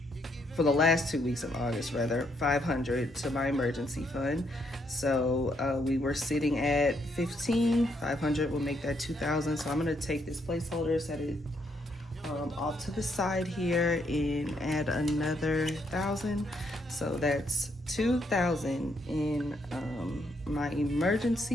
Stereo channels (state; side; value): normal; both; correlation 0.74